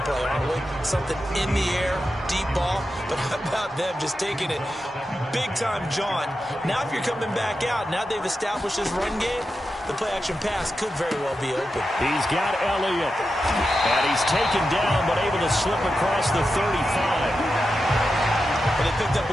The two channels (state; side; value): normal; both; correlation 0.90